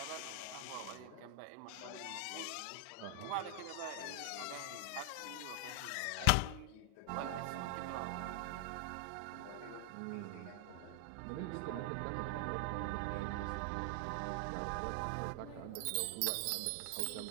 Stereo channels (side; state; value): both; different; correlation 0.00